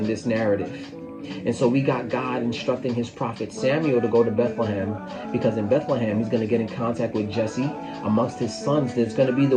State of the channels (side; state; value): both; identical; correlation 1.00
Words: this narrative. And so we got God instructing his prophet Samuel to go to Bethlehem, because in Bethlehem he's going to get in contact with Jesse. Amongst his sons, there's going to be the